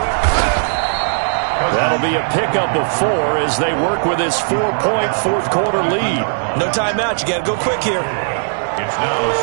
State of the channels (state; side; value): silent; left; 68 dB below the other